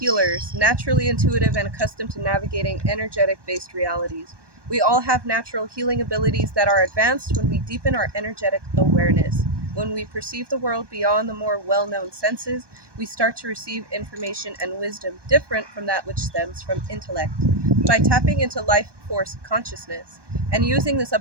naturally intuitive and accustomed to navigating energetic-based realities. We all have natural healing abilities that are advanced when we deepen our energetic awareness. When we perceive the world beyond the more well-known senses, we start to receive information and wisdom different from that which stems from intellect. By tapping into life force consciousness and using this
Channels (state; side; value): late; left; 1.2 ms